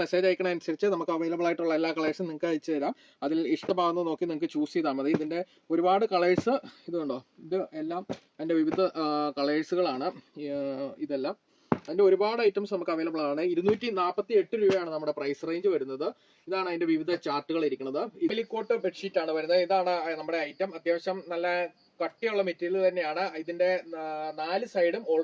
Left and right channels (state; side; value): identical; both; correlation 1.00